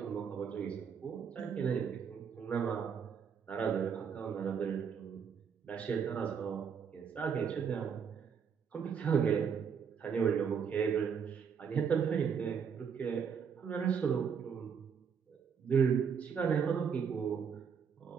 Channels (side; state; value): left; quieter; 6.9 dB